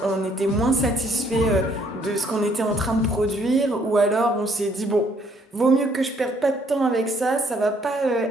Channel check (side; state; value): both; normal; correlation 0.66